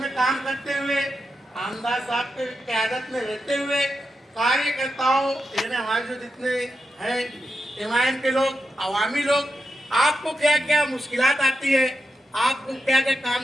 काम करते हुए, आमदार साहब के क़यादत में रहते हुए कार्यकर्ताओं यानी हमारे जो जितने हैं एमआईएम के लोग, अवामी लोग, आपको क्या क्या मुश्किलात आती है, आपको क्या क्या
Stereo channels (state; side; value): normal; both; correlation 0.87